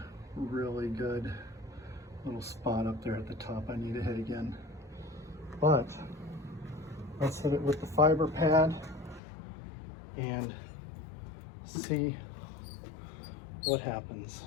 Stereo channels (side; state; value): right; drops out; at 9.2 s